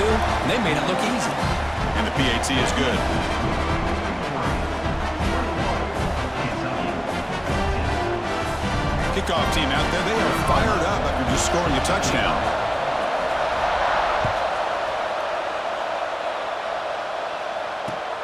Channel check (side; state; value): both; identical; correlation 1.00